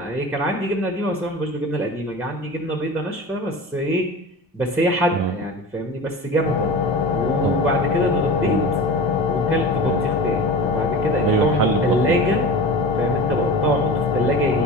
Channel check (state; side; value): normal; both; correlation 0.32